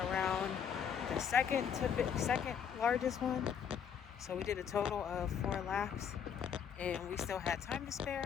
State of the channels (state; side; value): quieter; right; 7.8 dB